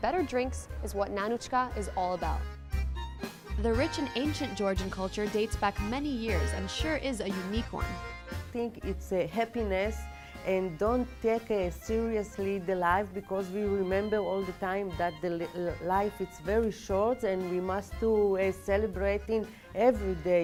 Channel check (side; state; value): both; identical; correlation 1.00